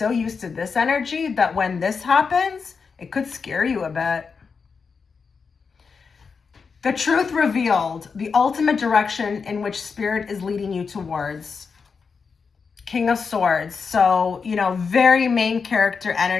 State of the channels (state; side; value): quieter; right; 5.4 dB